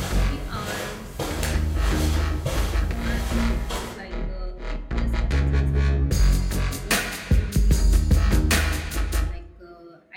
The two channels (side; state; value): both; identical; correlation 1.00